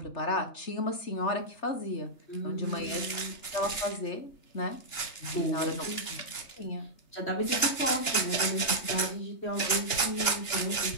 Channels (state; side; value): late; right; 2.9 ms